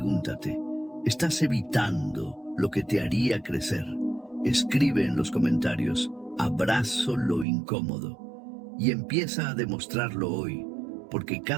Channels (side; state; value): left; drops out; at 7.5 s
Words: ¿estás evitando lo que te haría crecer? Escribe en los comentarios, abrazo lo incómodo, y empieza a demostrarlo hoy, porque